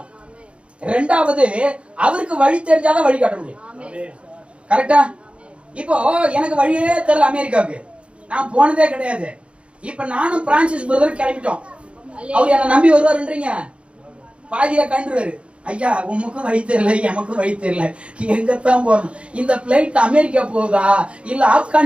2வது, அவருக்கு வழி தெரிஞ்சாதான் வழிகாட்ட முடியும். கரெக்டா? இப்போ எனக்கு வழியே தெரியல அமெரிக்காவுக்கு, நான் போனதே கிடையாது. இப்ப நானும் பிரான்சிஸ் பிரதர் கிளம்பிட்டோம். அவர் என்ன நம்பி வருவாருன்றீங்க, பாதியில கண்டுருவாரு. ஐயா உமக்கும் வழி தெரியல, எமக்கும் வழி தெரியல, எங்கத்தான் போறோம்? இந்த பிளைட் அமெரிக்கா போகுதா இல்ல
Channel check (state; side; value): late; left; 0.059 ms